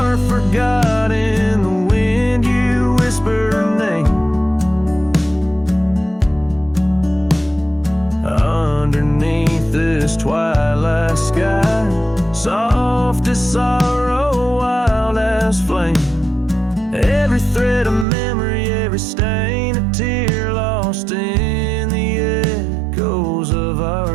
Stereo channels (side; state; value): left; drops out; at 18.1 s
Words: forgot in the wind, you whisper her name. Underneath this twilight sky, soft as sorrow, wild as flame. Every thread of memory, every stain a tear lost in the echoes of our